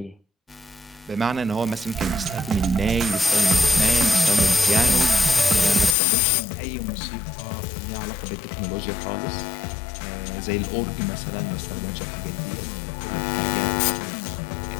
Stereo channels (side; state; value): right; drops out; at 6.0 s